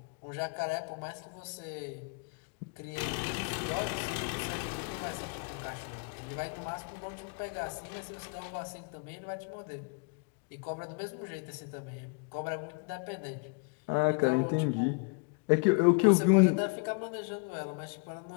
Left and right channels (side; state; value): right; quieter; 35.0 dB